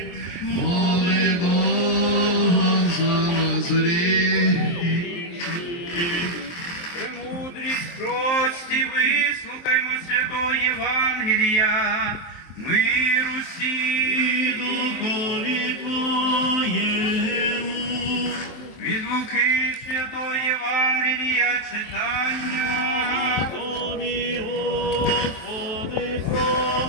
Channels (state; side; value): late; right; 23 ms